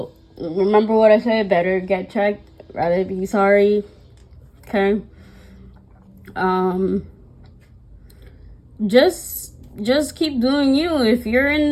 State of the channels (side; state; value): both; identical; correlation 1.00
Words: remember what I said. Better get checked. Rather be sorry. Okay? Just keep doing you. If you're